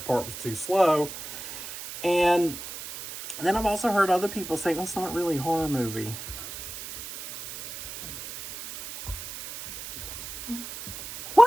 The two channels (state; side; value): noise; right; hiss, 10 dB below the sound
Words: part was too slow. And then I've also heard other people say, well, it's not really a horror movie.